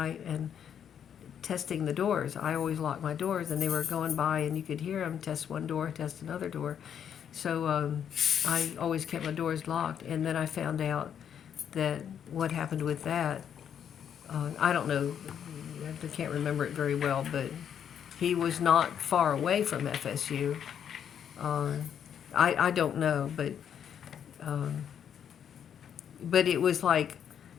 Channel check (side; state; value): right; quieter; 8.7 dB